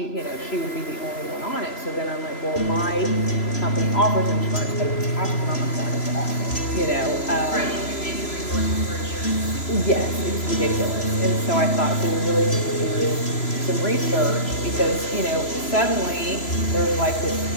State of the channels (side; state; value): right; late; 3.0 ms